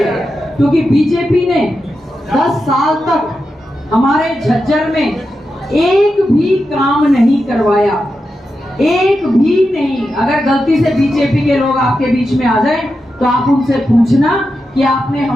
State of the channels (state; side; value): normal; both; correlation 0.89